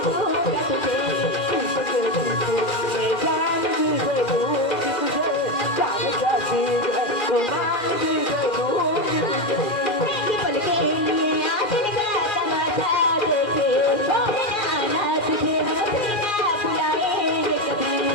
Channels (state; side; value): late; right; 2.4 ms